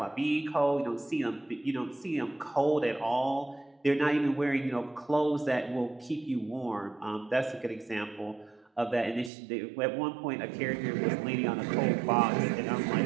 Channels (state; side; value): drops out; left; at 9.3 s